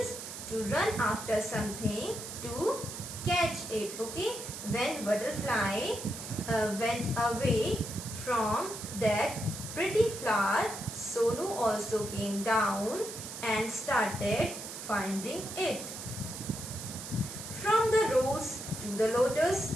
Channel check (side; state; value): right; noise; hiss, 9 dB below the sound